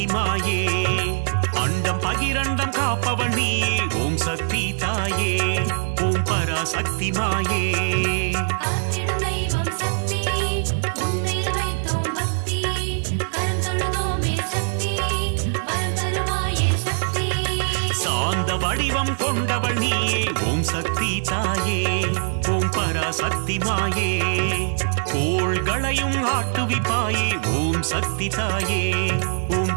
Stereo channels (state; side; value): silent; left; digital silence